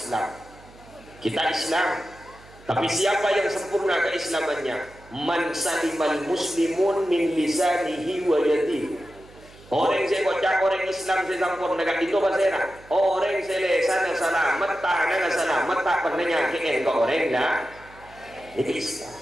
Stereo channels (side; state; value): right; noise; hum, 23 dB below the sound